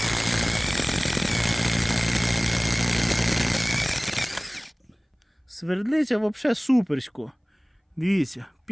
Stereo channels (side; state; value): both; identical; correlation 1.00